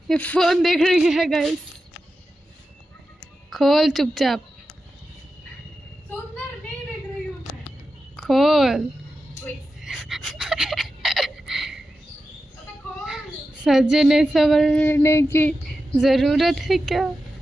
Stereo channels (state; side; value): normal; both; correlation 0.91